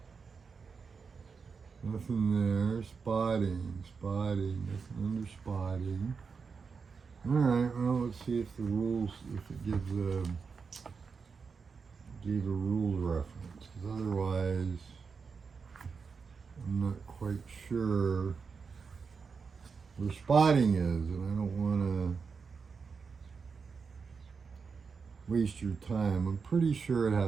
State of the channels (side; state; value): left; quieter; 5.4 dB